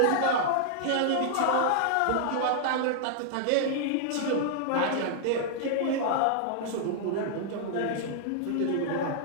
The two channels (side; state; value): both; different; correlation -0.01